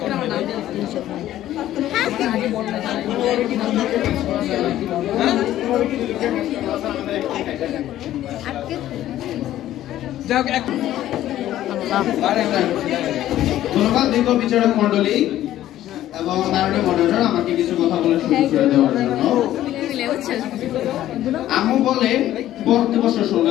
ধন্যবাদ দীর্ঘ বিচারক মন্ডলী। এবং মাননীয় মডারেটর আমাকে কিছু কথা বলে শুরু করে দেওয়ার জন্য। আম্মু বলে পড়তে বসে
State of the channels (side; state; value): right; quieter; 13.2 dB